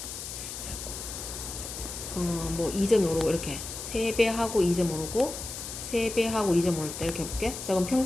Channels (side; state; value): left; noise; hiss, 8 dB below the sound